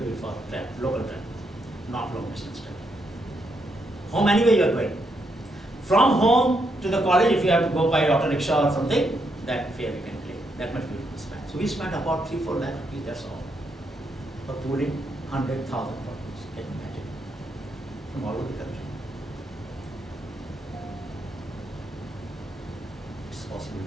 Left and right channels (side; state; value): both; normal; correlation 0.78